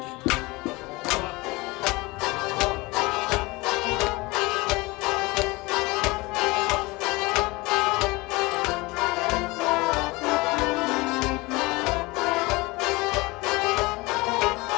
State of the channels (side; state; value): right; quieter; 23.1 dB